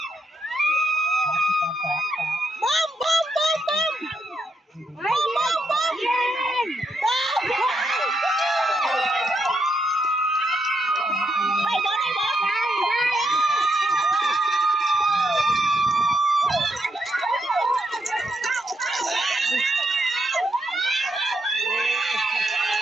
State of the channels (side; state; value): both; normal; correlation 0.80